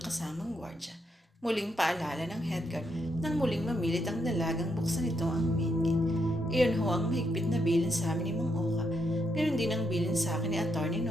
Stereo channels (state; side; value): normal; both; correlation 0.78